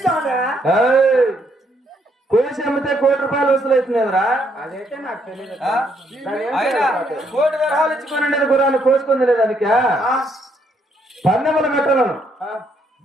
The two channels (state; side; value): normal; both; correlation 0.72